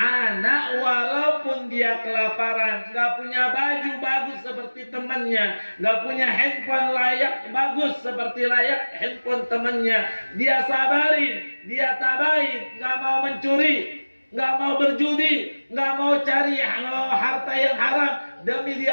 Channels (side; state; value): both; inverted; correlation -1.00